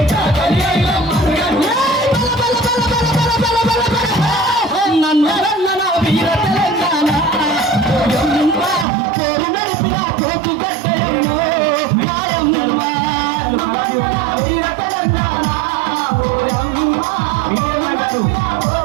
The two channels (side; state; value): left; drops out; at 8.8 s